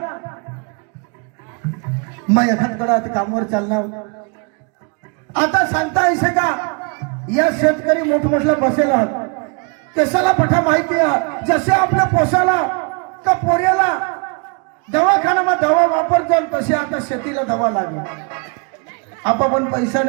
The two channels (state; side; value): quieter; left; 36.1 dB